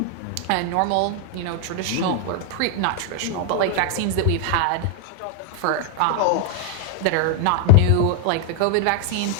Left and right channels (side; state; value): both; different; correlation 0.00